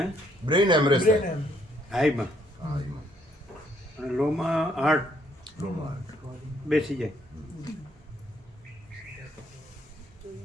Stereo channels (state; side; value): normal; both; correlation 0.69